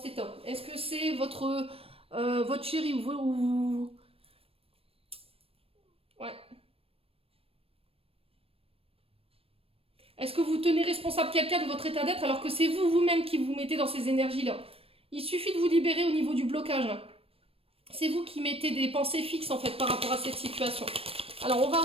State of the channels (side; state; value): left; late; 0.28 ms